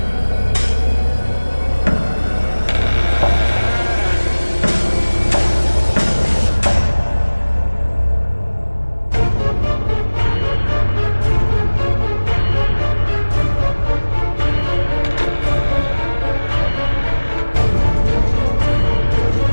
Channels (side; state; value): both; inverted; correlation -1.00